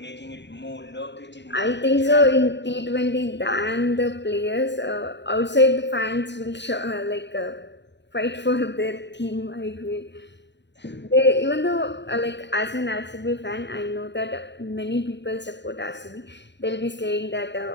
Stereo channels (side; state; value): right; late; 0.52 ms